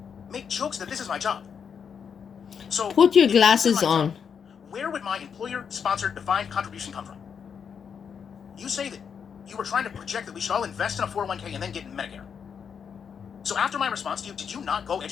make jokes that this is my job. So put your glasses on. Where would my employer-sponsored defined contribution come from? You say that you were trying to project that we should all invest in a 401k and then get Medicare. So after my response to you, did you not go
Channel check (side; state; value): right; quieter; 7.0 dB